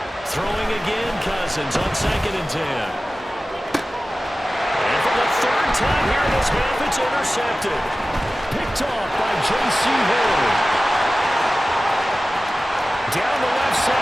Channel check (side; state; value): both; normal; correlation 0.96